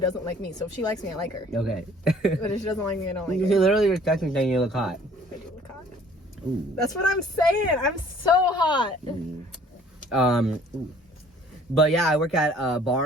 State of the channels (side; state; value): both; normal; correlation 0.55